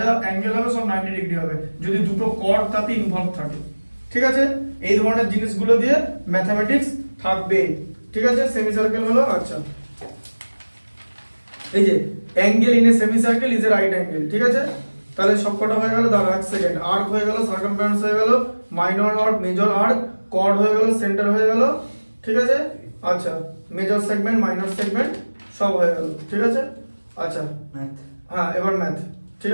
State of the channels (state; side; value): inverted; both; correlation -1.00